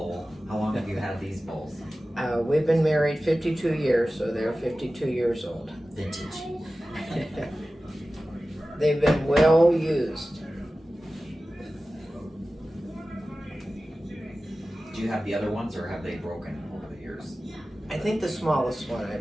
How long have you had these bowls? We've been married 52 years, so they're 52 years old. Vintage. They've been well used. Do you have the other ones, or have they broken over the years? I think the smallest one I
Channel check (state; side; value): normal; both; correlation 0.95